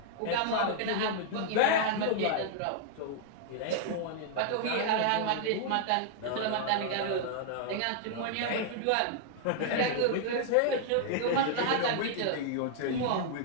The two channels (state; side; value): different; both; correlation -0.01